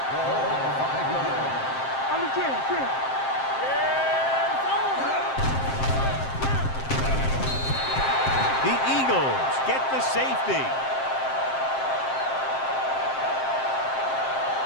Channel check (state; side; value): late; right; 7.6 ms